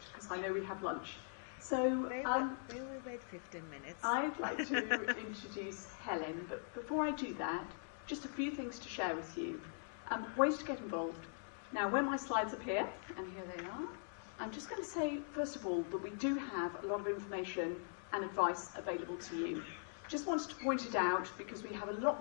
because I know we have lunch. So they will wait 15 minutes. I'd like to introduce Helen, but before I do that, just a few things to share with you. Ways to get involved. Now when my slides appear, and here they are, I'm just going to say first of all that we do have a lot of information and advice available to you. Just wanted to point it out because we have a lot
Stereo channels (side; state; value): right; silent; digital silence